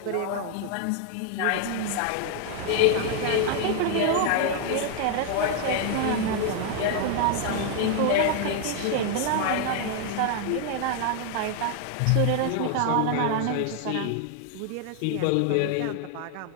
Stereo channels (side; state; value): both; different; correlation 0.00